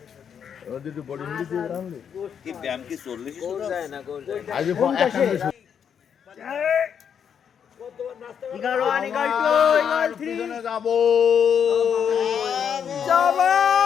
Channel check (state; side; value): quieter; right; 7.8 dB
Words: ওদের একটু বডি মিলি দিয়ে রান্না কি ব্যায়াম কি 40 গোল যায় না গোল যায় আজ এগারো আনি গাইতো পিছনে যাবো